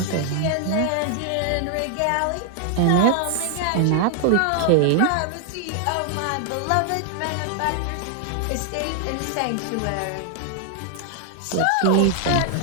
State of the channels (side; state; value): both; different; correlation 0.00